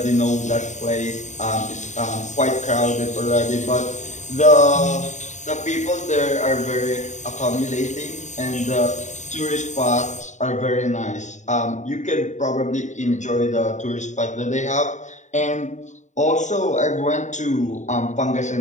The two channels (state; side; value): late; right; 0.35 ms